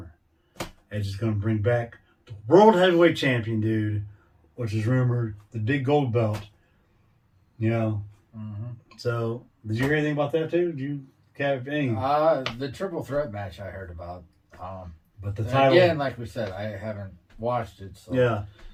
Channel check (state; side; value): identical; both; correlation 1.00